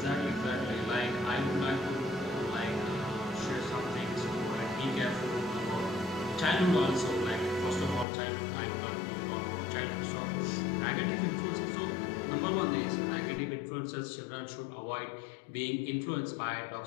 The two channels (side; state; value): right; drops out; at 8.1 s